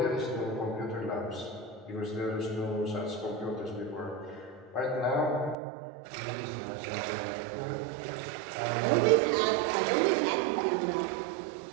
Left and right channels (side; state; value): left; drops out; at 5.6 s